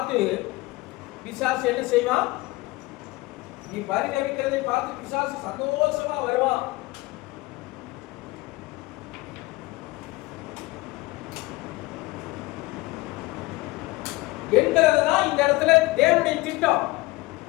பிசாசு என்ன செய்வான்? நீ பரிதவிக்கிறதை பார்த்து பிசாசு சந்தோஷமா வருவான். என்கிறதுதான் இந்த இடத்துல தேவனுடைய திட்டம்.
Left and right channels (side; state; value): right; quieter; 21.1 dB